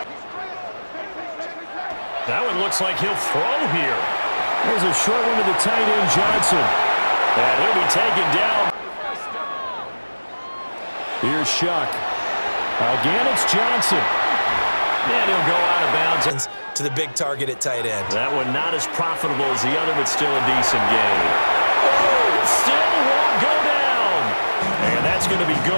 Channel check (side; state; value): both; inverted; correlation -1.00